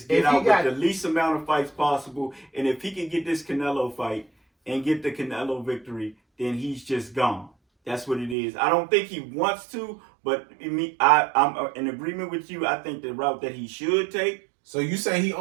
get If he out got- with the least amount of fights possible. And if he can get this Canelo fight and get the Canelo victory, then he's just gone. That's what it is. I don't think he wants to, but I'm in agreement with you. I think the route that he should take. So you say he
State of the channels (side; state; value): left; drops out; at 8.3 s